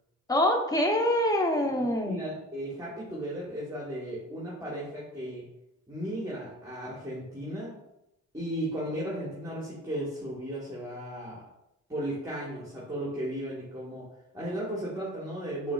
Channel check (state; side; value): normal; both; correlation 0.41